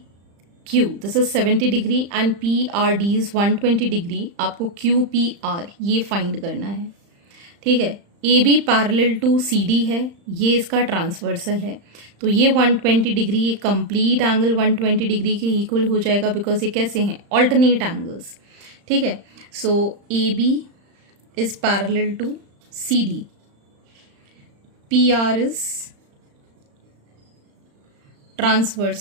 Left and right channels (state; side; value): late; left; 35 ms